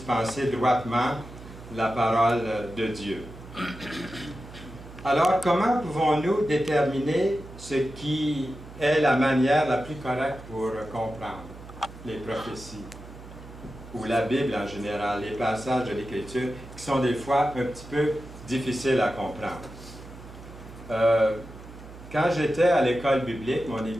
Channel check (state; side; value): noise; right; hum, 16 dB below the sound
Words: droitement la parole de Dieu. Alors, comment pouvons-nous déterminer ce qui est la manière la plus correcte pour comprendre les prophéties ou la Bible en général, les passages de l'Écriture qui sont des fois un petit peu difficiles à comprendre? Quand j'étais à l'école biblique, mon